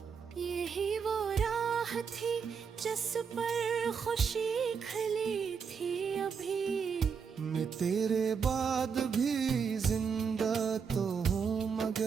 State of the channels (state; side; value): quieter; left; 6.3 dB